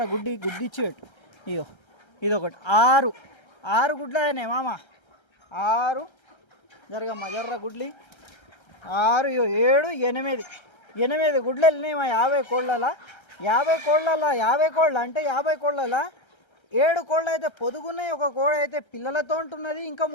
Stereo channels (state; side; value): late; right; 1.3 ms